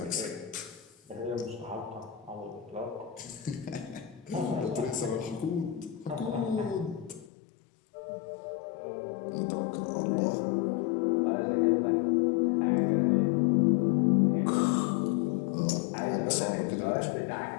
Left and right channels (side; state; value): right; drops out; at 7.3 s